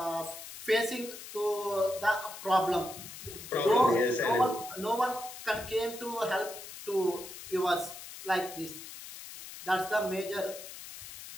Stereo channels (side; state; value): left; noise; hiss, 12 dB below the sound